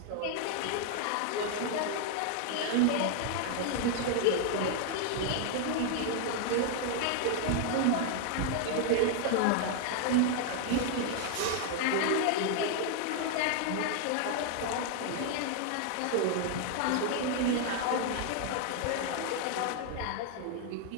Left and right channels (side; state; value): both; different; correlation 0.00